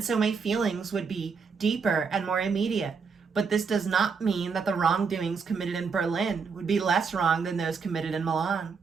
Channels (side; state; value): left; quieter; 5.5 dB